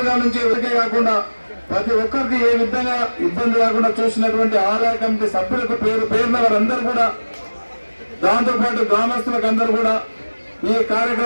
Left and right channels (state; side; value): inverted; both; correlation -1.00